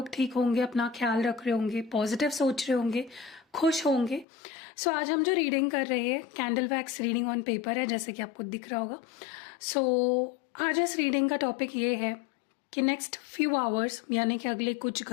ठीक होंगे, अपना ख्याल रख रहे होंगे, पॉजिटिव सोच रहे होंगे, खुश होंगे। सो आज हम जो रीडिंग कर रहे हैं candle wax reading on paper है, जैसे कि आपको दिख रहा होगा। सो आज इस रीडिंग का टॉपिक ये है कि नेक्स्ट फ्यू आवर्स यानी कि अगले कुछ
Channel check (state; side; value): drops out; right; at 4.2 s